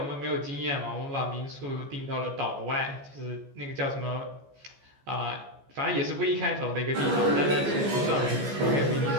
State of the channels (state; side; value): late; left; 14 ms